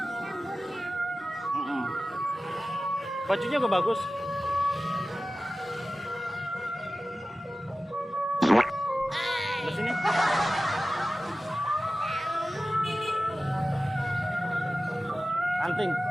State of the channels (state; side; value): normal; both; correlation 0.96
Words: Bajunya juga bagus. Di sini. Anting.